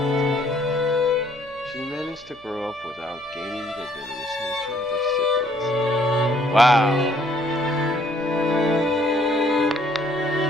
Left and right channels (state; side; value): noise; left; hum, 28 dB below the sound